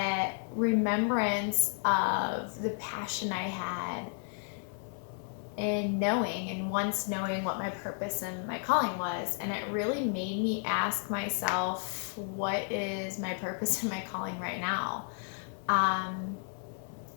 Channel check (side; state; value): right; silent; 56 dB below the other